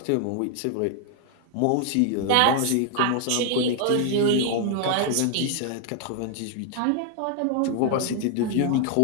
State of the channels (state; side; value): different; both; correlation 0.00